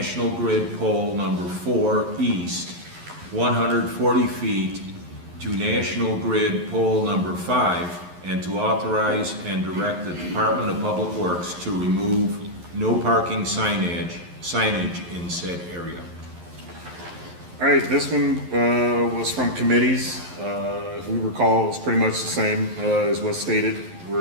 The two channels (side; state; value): left; late; 11 ms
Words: Grid Pole number 4 East, 140 feet, to National Grid Pole number 5, and to authorize and direct the Department of Public Works to remove no parking signage in said area. All right, this one was from committees. If we recall, it's pretty much the same as what's stated.